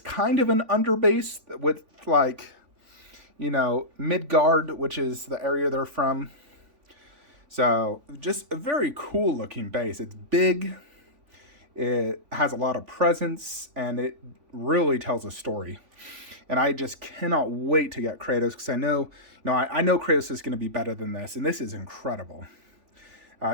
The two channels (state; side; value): late; left; 3.5 ms